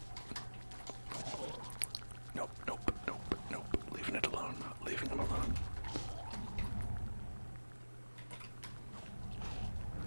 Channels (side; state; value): both; inverted; correlation -1.00